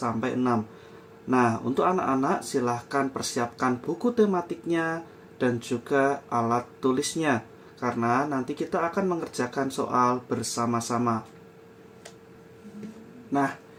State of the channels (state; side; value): identical; both; correlation 1.00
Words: Nah, untuk anak-anak silahkan persiapkan buku tematiknya dan juga alat tulisnya, karena nanti kita akan mengerjakan soal bersama-sama. Nah,